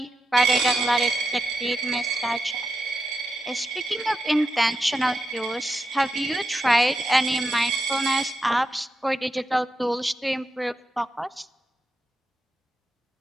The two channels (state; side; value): normal; both; correlation 0.86